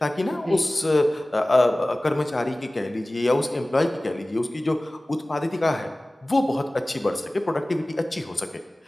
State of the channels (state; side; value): normal; both; correlation 0.98